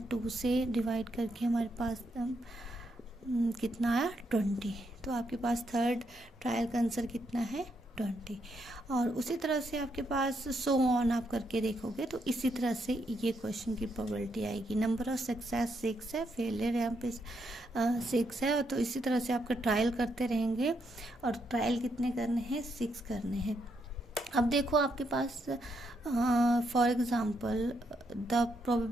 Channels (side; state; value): both; normal; correlation 0.78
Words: 2 से डिवाइड करके हमारे पास कितना आया 20। तो आपके पास थर्ड ट्रायल का आंसर कितना है 20। और उसी तरह से आपके पास सो ऑन आप करके देखोगे तो इसी तरह से ये क्वेश्चन की प्रोबेबिलिटी आएगी। नंबर ऑफ सक्सेस 6 है, फेलियर यहाँ पे 6 है, तो इसी तरह से आपका ट्रायल करते रहेंगे, और ट्रायल कितने करने हैं 6 करने हैं। अब देखो आपके पास फॉर एग्ज़ाम्पल द